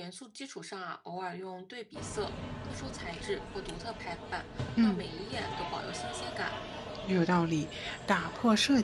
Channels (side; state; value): both; identical; correlation 1.00